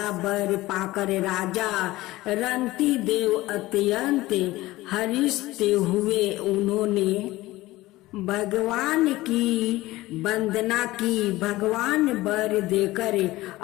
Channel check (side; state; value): right; quieter; 18.2 dB